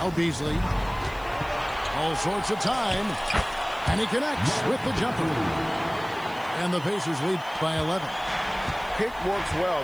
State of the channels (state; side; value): noise; left; hiss, 24 dB below the sound